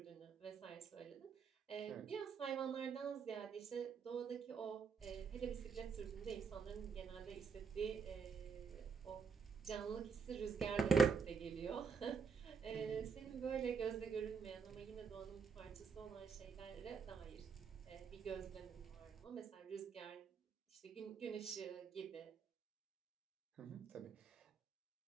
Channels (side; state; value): left; quieter; 5.8 dB